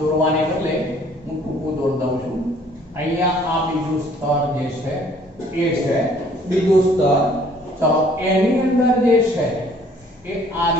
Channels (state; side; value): normal; both; correlation 0.58